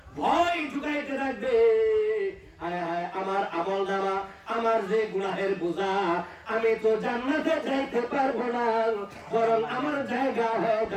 ভয় ঢুকাইতে থাকবে, হায় হায় আমার আমলনামা, আমার যে গুনাহের বোঝা, আমি তো জান্নাতে যাইতে পারবো না, বরং আমার জায়গা হয়ে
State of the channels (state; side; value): identical; both; correlation 1.00